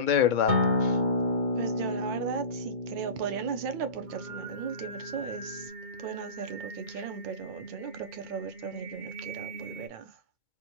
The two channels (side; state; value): left; late; 2.2 ms